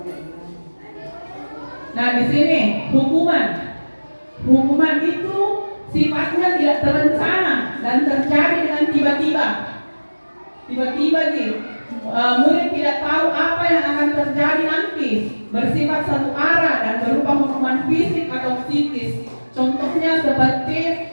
Nah, di sini hukuman itu sifatnya tidak terencana dan terjadi dengan tiba-tiba. Tiba-tiba nih, murid tidak tahu apa yang akan terjadi nanti, bersifat satu arah dan berupa hukuman fisik atau psikis. Contohnya seperti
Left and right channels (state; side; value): inverted; both; correlation -1.00